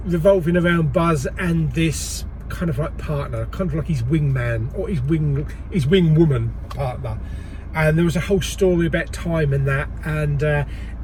revolving around Buzz and this kind of like partner, kind of like his wingman or his wing woman partner. And there was a whole story about time and that, and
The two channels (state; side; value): identical; both; correlation 1.00